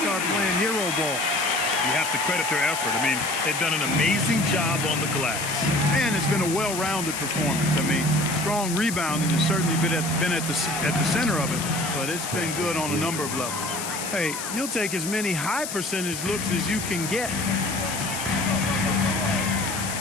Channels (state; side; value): noise; left; hiss, 6 dB below the sound